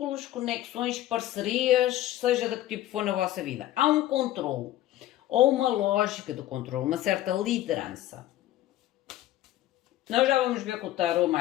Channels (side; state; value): right; quieter; 14.1 dB